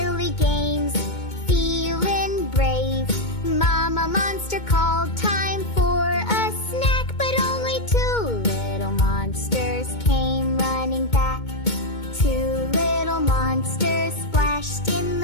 games, feeling brave. Mama Monster called, time for a snack, but only 2 little monsters came running back. 2 little monsters splashed in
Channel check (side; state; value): right; late; 2.2 ms